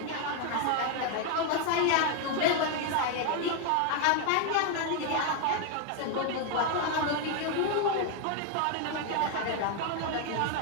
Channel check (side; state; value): both; different; correlation 0.01